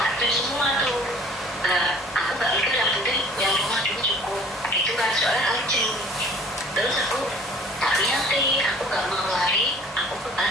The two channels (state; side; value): normal; both; correlation 0.50